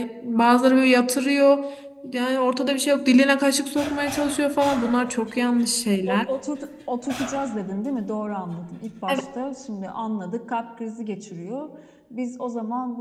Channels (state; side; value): identical; both; correlation 1.00